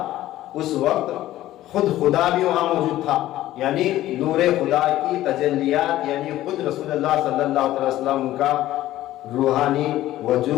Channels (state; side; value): quieter; right; 14.6 dB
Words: اس وقت خود خدا بھی وہاں موجود تھا، یعنی نور خدا کی تجلیات، یعنی خود رسول اللہ صلی اللہ علیہ وسلم کا روحانی